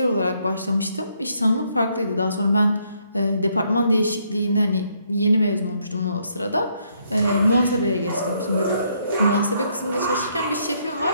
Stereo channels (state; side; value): inverted; both; correlation -0.72